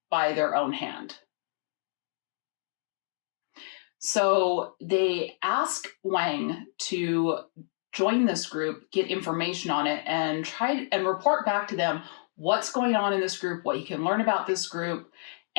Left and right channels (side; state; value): right; silent; digital silence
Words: by their own hand. So they ask Wang to join this group, get information on it, and try and report back to them what's going on in this group, what you can learn about this group,